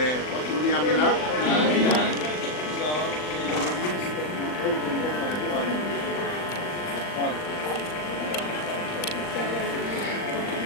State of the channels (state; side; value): late; right; 39 ms